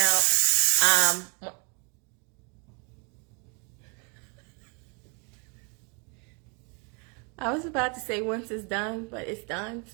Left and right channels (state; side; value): quieter; left; 34.9 dB